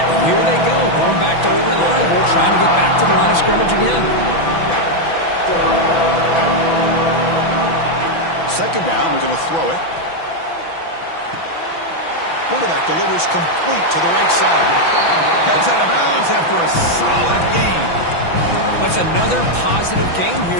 here they go, going back to over-reliable, trying to get back to the line of scrimmage again. 2nd down, we're going to throw it. Quarterback delivers complete to the right side. Heads out of bounds after a solid gain. That's another positive game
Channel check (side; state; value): right; late; 6.0 ms